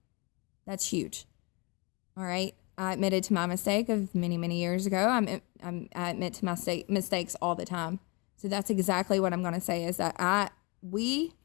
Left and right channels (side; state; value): right; quieter; 29.3 dB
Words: That's huge, all right? I admitted to my mistake of many, many years ago. I admit to my mistakes all the time. So that's exactly what I'm going to say is that we